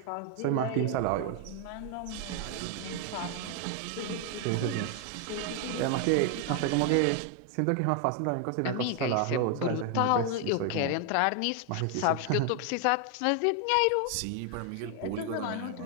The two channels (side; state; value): both; different; correlation 0.00